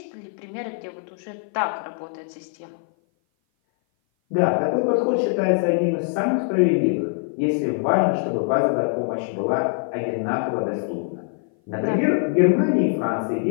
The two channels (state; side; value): silent; right; 57 dB below the other